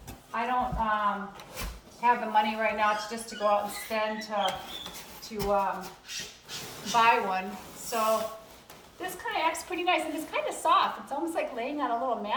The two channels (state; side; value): identical; both; correlation 1.00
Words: have the money right now to go out and spend to buy one. So this kind of acts pretty nice, and it's kind of soft. It's almost like laying on a little